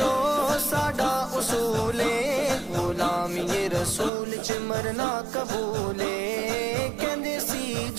ساڈا اصول ہے غلام یہ رسول چ مرنا قبول ہے کہندے سی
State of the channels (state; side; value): drops out; left; at 4.1 s